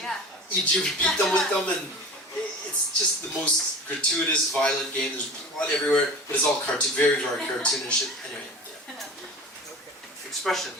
you beat them with them, and it's just the most gratuitous, violent game. There's blood everywhere, but it's all very, very cartoonish. Anyway, yeah. Expression.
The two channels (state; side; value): normal; both; correlation 0.37